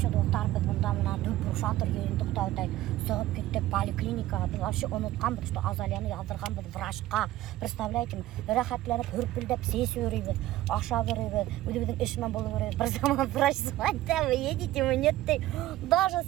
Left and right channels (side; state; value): left; quieter; 15.4 dB